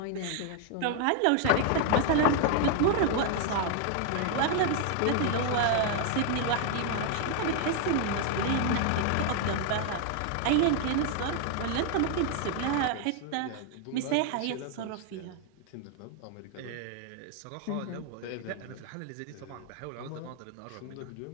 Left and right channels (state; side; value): different; both; correlation 0.00